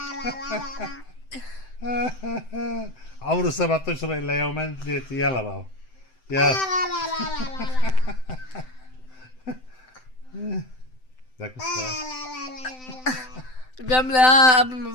عمره 7 اشهر الا يومين ثلاثة يلا بابا يلا ذاك بيعمل ايه قبل ما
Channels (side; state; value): right; late; 7.8 ms